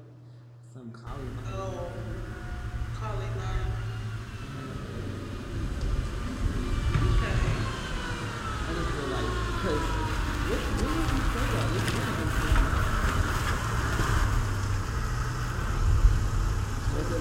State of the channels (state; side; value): identical; both; correlation 1.00